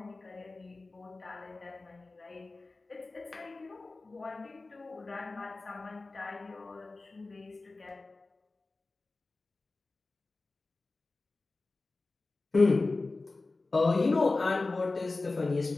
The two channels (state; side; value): quieter; right; 3.4 dB